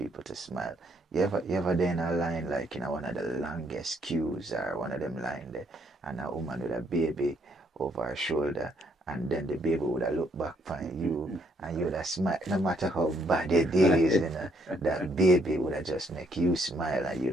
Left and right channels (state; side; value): normal; both; correlation 0.70